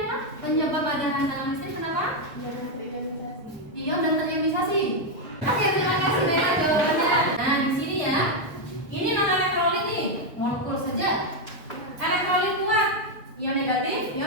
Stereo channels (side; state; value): both; normal; correlation 0.02